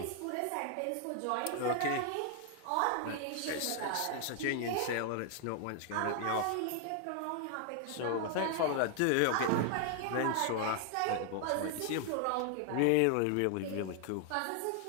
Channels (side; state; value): both; different; correlation 0.00